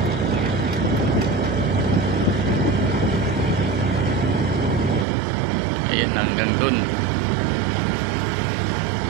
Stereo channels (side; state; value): left; drops out; at 5.1 s